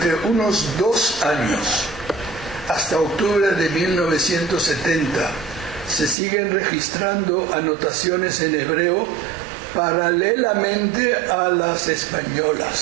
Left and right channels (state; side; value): drops out; left; at 6.2 s